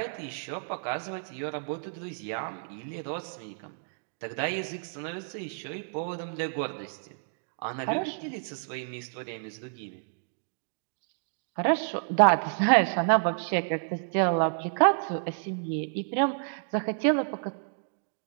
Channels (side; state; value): left; silent; digital silence